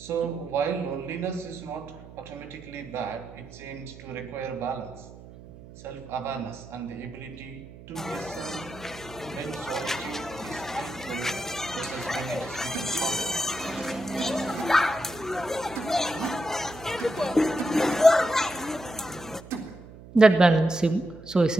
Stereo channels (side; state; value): right; noise; hum, 17 dB below the sound